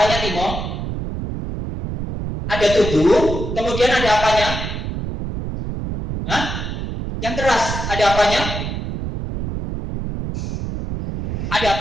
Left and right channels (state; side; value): noise; right; rumble, 4 dB below the sound